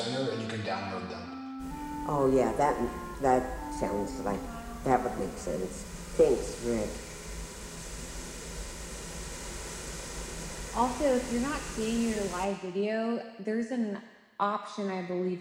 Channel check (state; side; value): identical; both; correlation 1.00